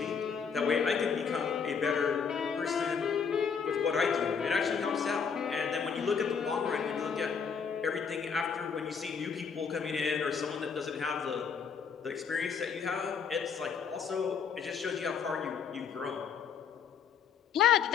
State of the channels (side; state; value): right; quieter; 6.5 dB